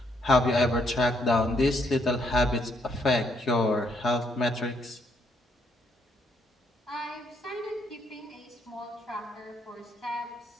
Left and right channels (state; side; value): normal; both; correlation 0.73